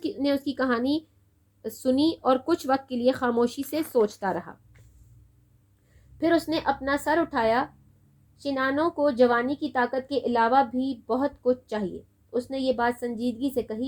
نے اس کی کہانی سنی اور کچھ وقت کے لیے خاموشی سے سوچتا رہا. پھر اس نے اپنا سر اٹھایا. شنانوں کو جوانی کی طاقت کے علاوہ بھی بہت کچھ چاہیے. اس نے یہ بات سنجیدگی سے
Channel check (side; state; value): both; identical; correlation 1.00